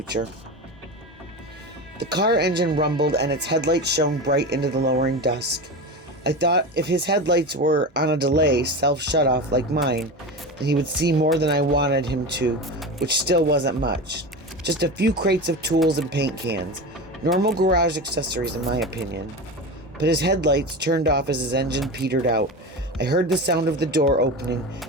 The car engine rumbled and its headlights shone bright into the lowering dusk. I thought if his headlights were on a delay, self-shut-off like mine, then he would see more than I wanted him to, which still wasn't much. Just a few crates of tools and paint cans. Normal garage accessories in my opinion. But his headlights turned off as his engine petered out. I heard the sound of the door opening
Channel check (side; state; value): both; normal; correlation 0.25